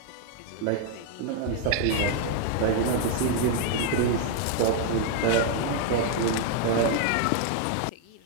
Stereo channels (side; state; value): both; different; correlation 0.00